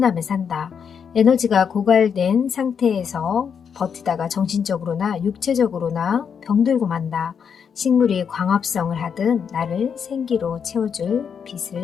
산다. 에너지가 고갈된 상태에서 버티다가 정신적으로나 육체적으로나 병들고 만다. 식물이 광합성을 하듯 나를 생기로 채워줄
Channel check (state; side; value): quieter; right; 7.0 dB